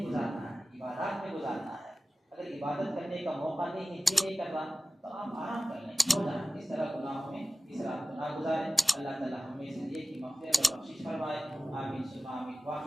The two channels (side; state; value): both; normal; correlation 0.96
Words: گزارنا ہے، عبادات میں گزارنا ہے۔ اگر عبادت کرنے کا موقع نہیں ہے، جی نہیں کر رہا، تو آپ آرام کر لیں، سو جائیں، اس طرح گناہوں میں اس رات کو نہ گزاریں۔ اللہ تعالیٰ ہمیں سے یہ کہ مغفرت اور بخشش فرمائے۔ آمین ثم آمین،